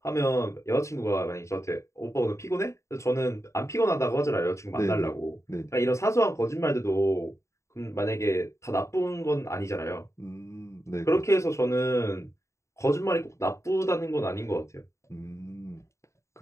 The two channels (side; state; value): right; late; 0.14 ms